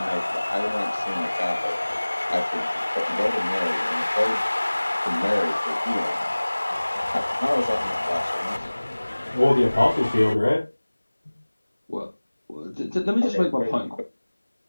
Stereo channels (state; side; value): inverted; both; correlation -1.00